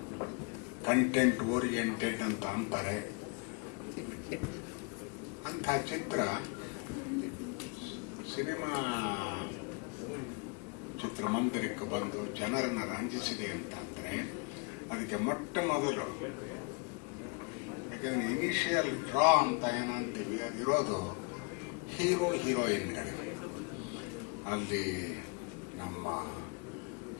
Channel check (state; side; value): quieter; right; 33.3 dB